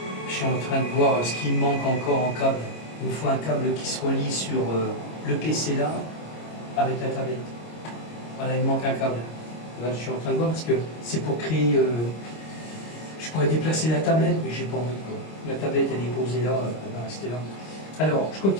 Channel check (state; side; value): late; right; 26 ms